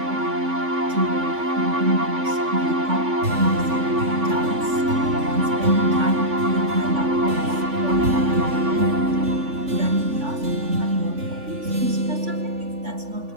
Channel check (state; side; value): late; left; 3.5 ms